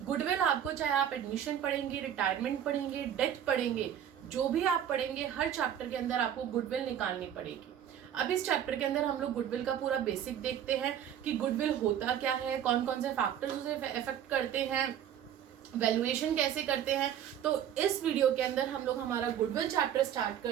गुडविल आपको, चाहे आप एडमिशन पढ़ेंगे, रिटायरमेंट पढ़ेंगे, डेथ पढ़ेंगे, जो भी आप पढ़ेंगे, हर चैप्टर के अंदर आपको गुडविल निकालनी पड़ेगी। अब इस चैप्टर के अंदर हम लोग गुडविल का पूरा बेसिक देखते हैं कि गुडविल होता क्या है, कौन कौन से फैक्टर्स उसे इफेक्ट करते हैं, वैल्यूएशन कैसे करते हैं। तो इस वीडियो के अंदर हम लोग हमारा गुडविल चैप्टर स्टार्ट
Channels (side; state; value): left; quieter; 9.8 dB